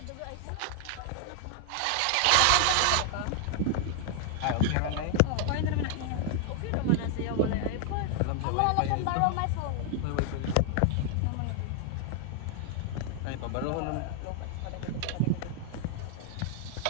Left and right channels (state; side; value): different; both; correlation 0.00